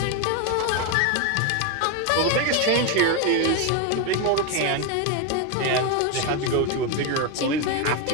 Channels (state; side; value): different; both; correlation 0.02